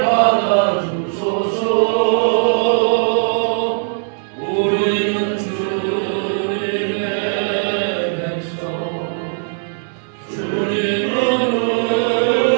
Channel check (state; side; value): silent; left; 67 dB below the other